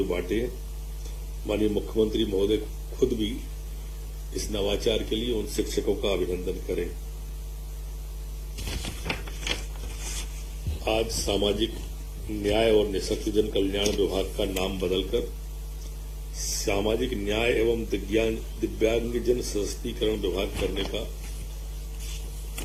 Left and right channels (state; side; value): identical; both; correlation 1.00